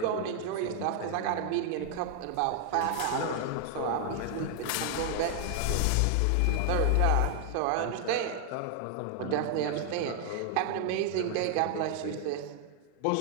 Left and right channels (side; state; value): both; different; correlation 0.00